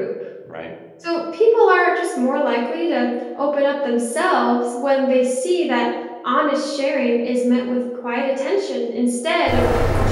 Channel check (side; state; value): both; identical; correlation 1.00